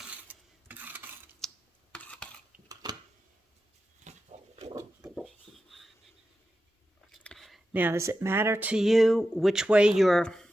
Now, does it matter to you which way your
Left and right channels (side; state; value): both; normal; correlation 0.91